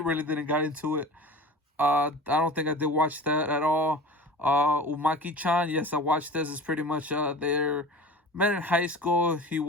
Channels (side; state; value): both; normal; correlation 0.36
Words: didn't get into it. I don't think I did watch that at all. Umaki-chan, yes, I watched this. It's pretty much they're met in high school. He